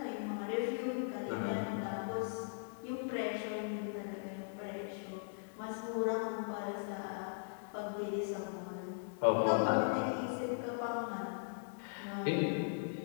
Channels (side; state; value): right; silent; digital silence